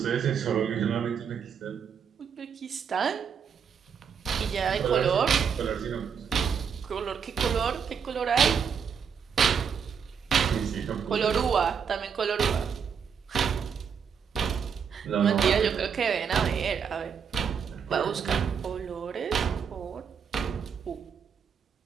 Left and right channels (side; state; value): left; quieter; 6.9 dB